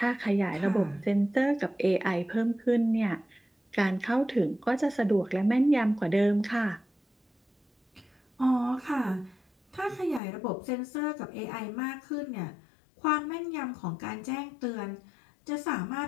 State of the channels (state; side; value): drops out; right; at 10.2 s